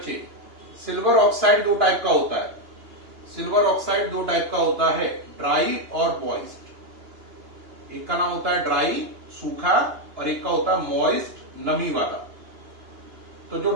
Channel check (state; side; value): late; left; 2.9 ms